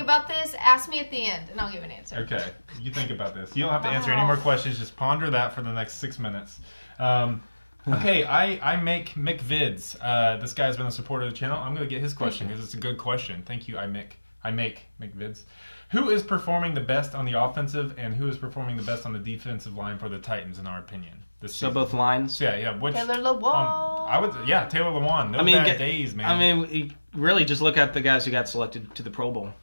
about this. Ask me at the end, and I'll give an answer. Okay. You think about this. You don't have to answer any more questions. Just ponder that for the next 6 minutes. Okay, I make Mick Vids. This guy's been a supporter of the channel. I'm going to get his question because it's a good question. Thank you, I make Mick Vids. Who is performing the best on the offensive and who is performing the best on the defensive line for the Titans, in our opinion? So both lines? Yeah. Which, Taylor Lewan. Taylor Lewan. No bad days, man. I mean, really just look at the guys who got selected to the Pro Bowl.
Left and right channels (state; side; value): inverted; both; correlation -1.00